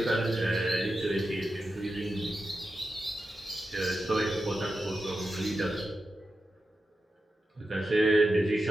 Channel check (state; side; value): normal; both; correlation 0.90